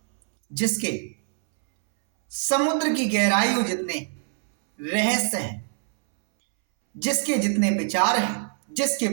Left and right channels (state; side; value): silent; left; 63 dB below the other